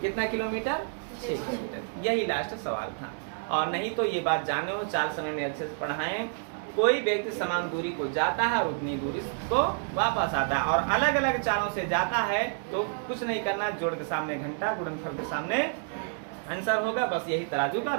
कितना किलोमीटर 6 किलोमीटर। यही लास्ट सवाल था। और नहीं तो ये बात जाने हो, चाल समय में अच्छे से पढ़ाएं। कोई व्यक्ति समान दूरी को जाता है और उतनी दूरी को वापस आता है, और अलग अलग चालों से जाता है तो कुछ नहीं करना, जोड़ के सामने घंटा, गुणनफल के सामने आंसर होगा। बस यही तराजू का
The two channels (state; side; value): silent; left; digital silence